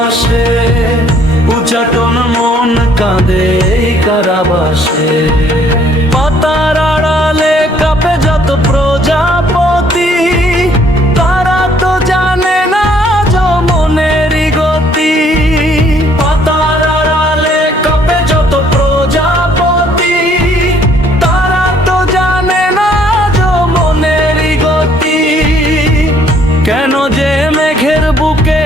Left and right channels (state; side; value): normal; both; correlation 0.63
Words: উচ্চাটন মন কাঁদে কারাবাসে। পাতার আড়ালে কাঁপে যত প্রজাপতি, তারা তো জানে না যমনেরই গতি। পাতার আড়ালে কাঁপে যত প্রজাপতি, তারা তো জানে না যমনেরই গতি। কেন যে মেঘের বুকে